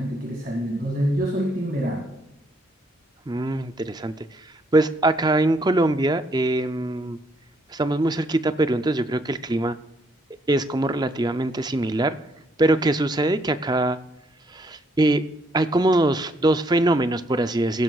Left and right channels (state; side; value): normal; both; correlation 0.70